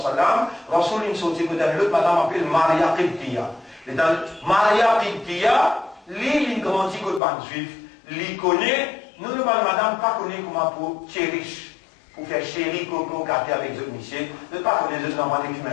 Rasoul il sortit que dans l'autre, madame appelle Maria Qibtiya. Et dans Maria Qibtiya, lui, il grandit que le ban juif. Il connaît, nous, le ban madame, pas connaît comment pour chérish, pour faire chéri, coco, gâter avec les autres monsieur. Je ne pas connaître les autres normaux qui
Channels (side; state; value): right; drops out; at 7.2 s